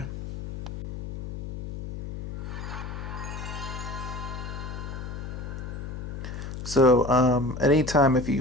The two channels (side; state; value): left; noise; hum, 8 dB below the sound